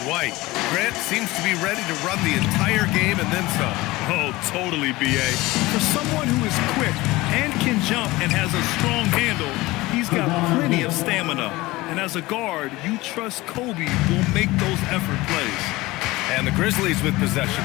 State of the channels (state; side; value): quieter; right; 20.0 dB